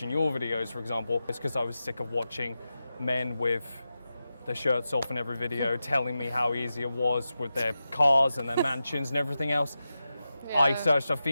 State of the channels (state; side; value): inverted; both; correlation -0.91